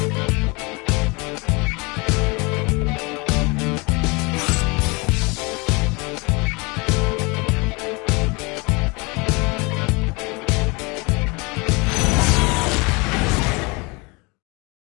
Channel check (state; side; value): quieter; right; 27.9 dB